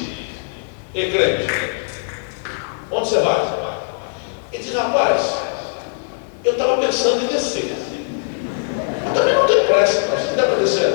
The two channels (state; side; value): silent; right; digital silence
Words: ei, crente, onde você vai? Ele disse: rapaz, eu estava pensando em descer. Eu também não tenho pressa, mas se der para descer